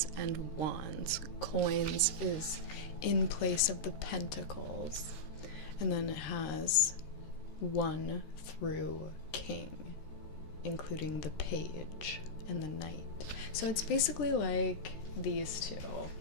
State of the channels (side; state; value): right; late; 14 ms